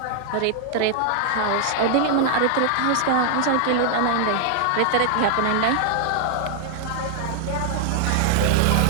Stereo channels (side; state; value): both; different; correlation 0.00